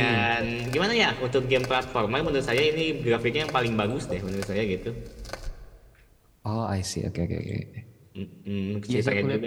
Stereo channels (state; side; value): identical; both; correlation 1.00